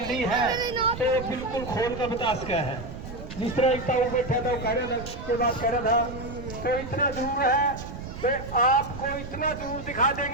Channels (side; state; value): right; noise; rumble, 10 dB below the sound